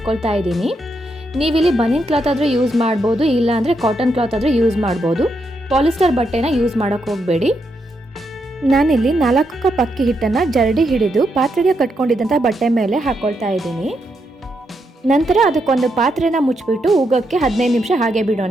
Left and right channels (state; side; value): normal; both; correlation 0.81